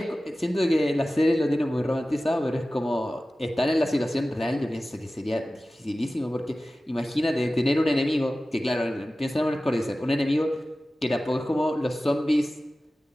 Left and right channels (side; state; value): both; normal; correlation 0.96